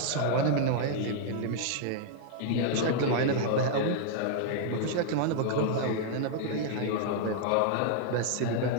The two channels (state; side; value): different; both; correlation -0.01